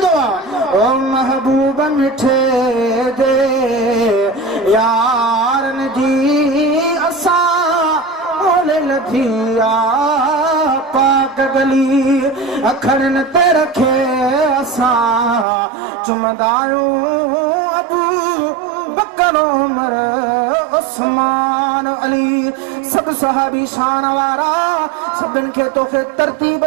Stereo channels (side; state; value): left; drops out; at 15.5 s